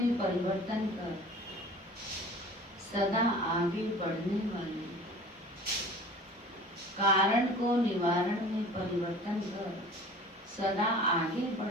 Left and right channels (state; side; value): normal; both; correlation 0.43